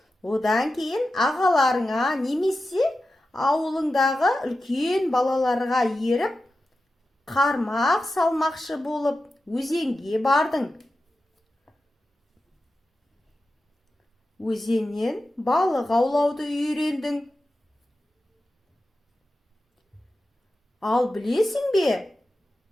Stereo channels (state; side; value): normal; both; correlation 0.92